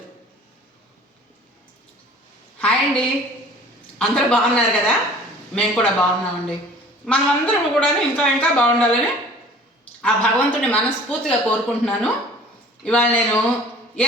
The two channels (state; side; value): normal; both; correlation 0.48